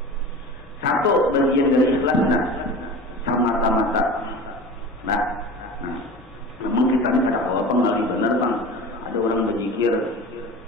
Satu bagian dari ikhlas mata-mata. Nah, memang kita ini ada apa nggak benar bang? Ada orang berzikir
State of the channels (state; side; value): normal; both; correlation 0.35